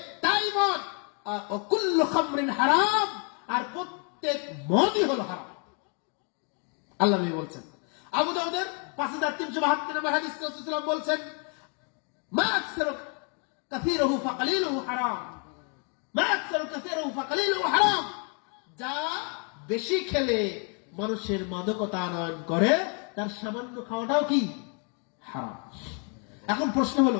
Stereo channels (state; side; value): quieter; right; 38.6 dB